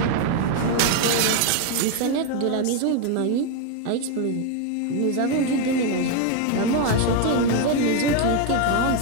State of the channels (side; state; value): both; different; correlation 0.01